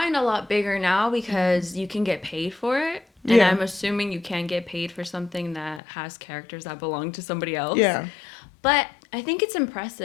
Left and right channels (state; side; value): drops out; right; at 5.8 s